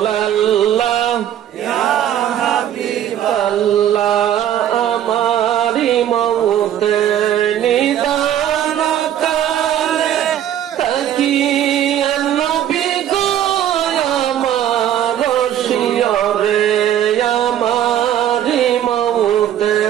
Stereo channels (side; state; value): left; quieter; 11.0 dB